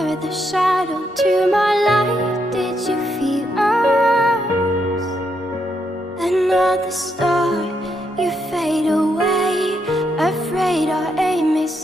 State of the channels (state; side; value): normal; both; correlation 0.79